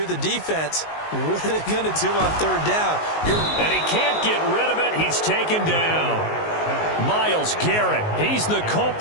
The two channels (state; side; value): late; right; 19 ms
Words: the defense, what are they going to do on 3rd down? And he can't get rid of it. He's taken down. Myles Garrett, he's the